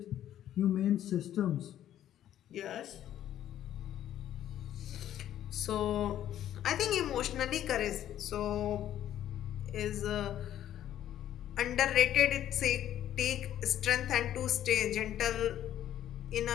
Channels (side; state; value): right; quieter; 11.6 dB